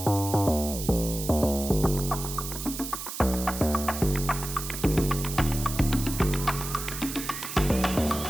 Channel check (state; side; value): noise; right; hiss, 7 dB below the sound